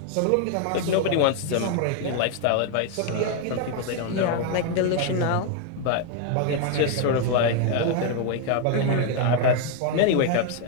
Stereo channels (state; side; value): different; both; correlation 0.01